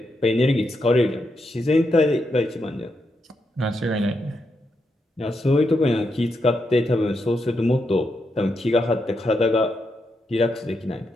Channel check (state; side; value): normal; both; correlation 0.83